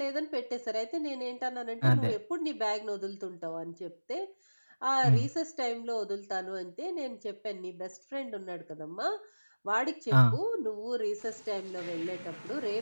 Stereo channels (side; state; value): both; inverted; correlation -1.00